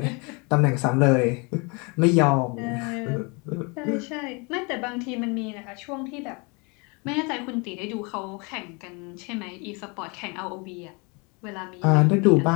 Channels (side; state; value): right; quieter; 30.2 dB